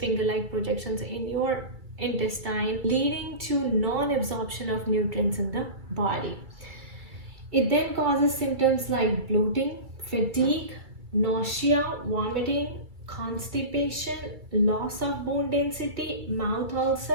projections in your intestine, leading to non-absorption of nutrients in the body. It then causes symptoms like bloating, fatigue, nausea, vomiting, constipation, loss of bone density, mouth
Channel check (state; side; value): late; left; 2.3 ms